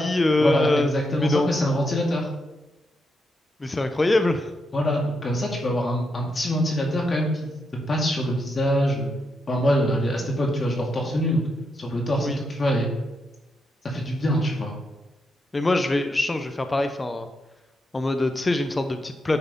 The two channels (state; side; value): normal; both; correlation 0.82